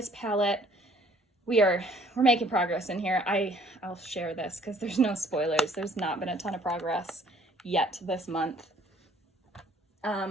palette. We're making progress in here. I'll share this because there's no spoilers. There's not been a ton of progress yet this month.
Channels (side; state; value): both; normal; correlation 0.59